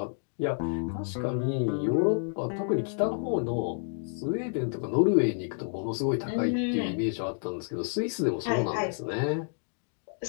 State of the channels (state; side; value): silent; right; digital silence